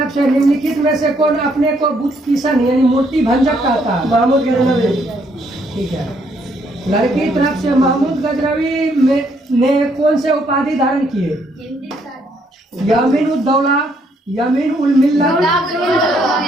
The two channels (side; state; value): both; normal; correlation 0.70